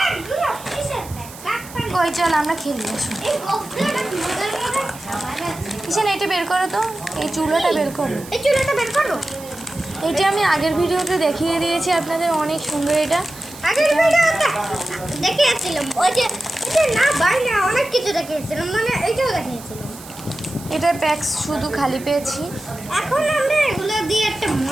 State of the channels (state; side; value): noise; right; hiss, 17 dB below the sound